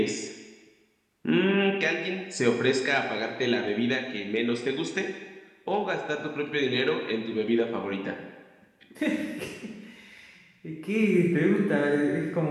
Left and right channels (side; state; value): both; identical; correlation 1.00